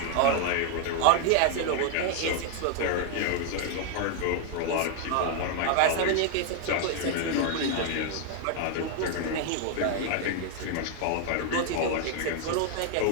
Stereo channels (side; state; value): both; different; correlation 0.00